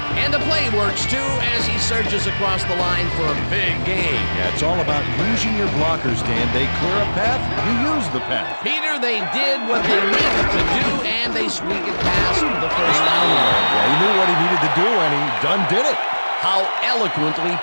And the play works, too, as he surges across the line for a big gain. Yeah, it's all about using your blockers, Dan. They clear a path, you use the path. Peter, they did what they needed to do, and they squeak it past the first down line. Yeah, he knew what he needed to do, and he done did it. How eloquently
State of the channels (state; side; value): inverted; both; correlation -1.00